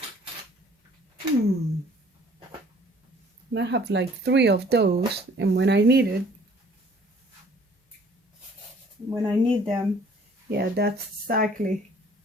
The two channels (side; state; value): both; normal; correlation 0.56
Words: I have like 3 of those, and when I need them, yeah, that's exactly